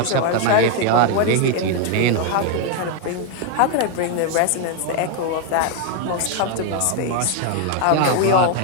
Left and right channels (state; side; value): different; both; correlation 0.00